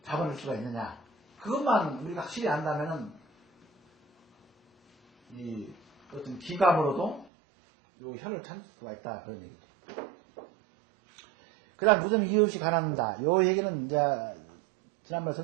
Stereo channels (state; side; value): drops out; left; at 7.3 s